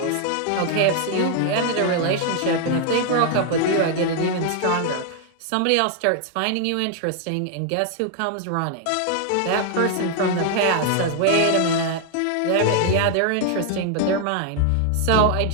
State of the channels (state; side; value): different; both; correlation 0.00